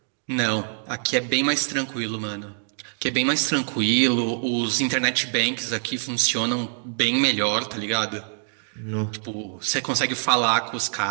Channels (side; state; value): left; silent; digital silence